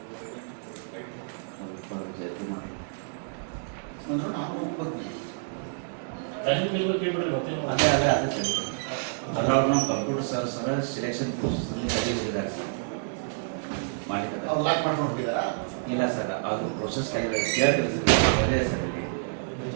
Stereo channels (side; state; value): left; silent; digital silence